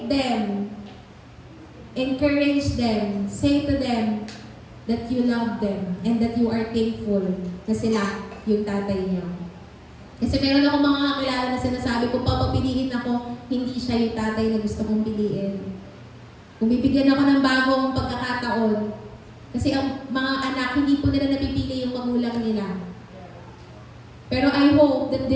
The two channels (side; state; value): both; identical; correlation 1.00